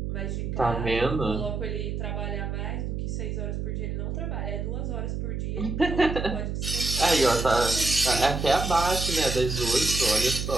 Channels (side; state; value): right; noise; hum, 3 dB below the sound